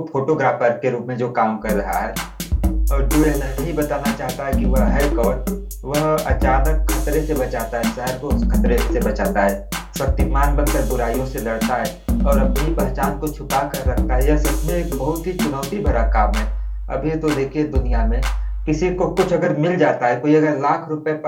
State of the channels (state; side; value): identical; both; correlation 1.00